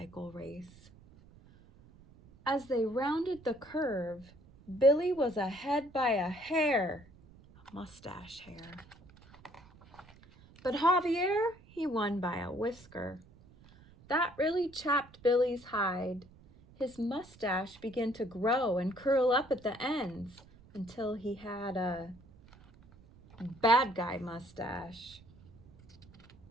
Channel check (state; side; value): noise; right; rumble, 24 dB below the sound